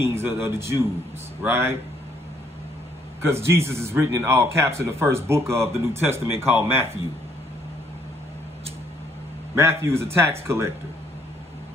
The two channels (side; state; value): both; normal; correlation 0.67